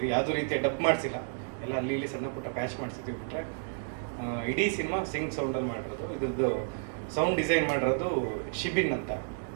ಯಾವುದೇ ರೀತಿಯ ಡಬ್ ಮಾಡಿಸಿಲ್ಲ, ಎಲ್ಲ ಅಲ್ಲಿ ಇಲ್ಲಿ ಸಣ್ಣ ಪುಟ್ಟ ಪ್ಯಾಚ್ ಮಾಡಿಸಿದ್ವಿ ಬಿಟ್ಟರೆ ಇಡೀ ಸಿನಿಮಾ ಸಿಂಕ್ ಸೌಂಡಲ್ಲಿ ಮಾಡಿರೋದು. ಇದ್ರದ್ದು ಸೌಂಡ್ ಡಿಸೈನ್ ಮಾಡಿರೋದು ಶಿಬಿನ್ ಅಂತ,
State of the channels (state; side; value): silent; left; digital silence